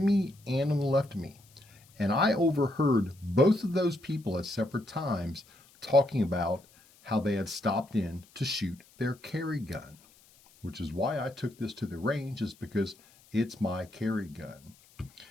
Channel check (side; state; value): left; noise; hiss, 28 dB below the sound